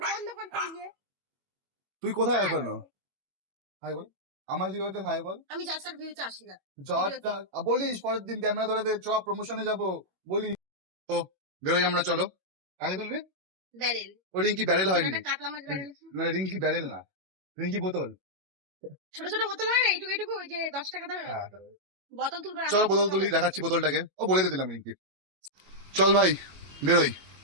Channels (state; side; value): late; left; 21 ms